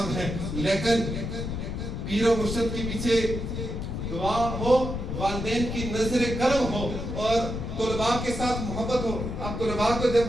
ہے، لیکن پیر و مرشد کے پیچھے دعا ہو، والدین کی نظر کرم ہو اور طلباء کے ساتھ محبت ہو۔ اب طلباء کو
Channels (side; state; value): left; noise; rumble, 4 dB below the sound